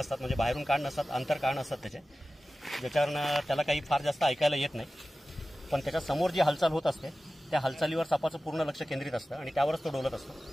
म्हणजे बाहेरून कान नसतात, अंतर कान असतात त्याचे, ज्याच्यावरनं त्याला काही फार जास्त ऐकायला येत नाही। पण त्याच्या समोर जी हालचाल होत असते त्या हालचालीवर सापाचं पूर्ण लक्ष केंद्रित असतं आणि त्यावरच तो डोलत असतो।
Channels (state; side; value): normal; both; correlation 0.95